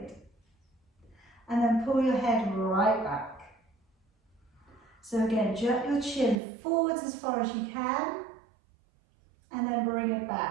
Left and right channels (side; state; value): left; drops out; at 6.4 s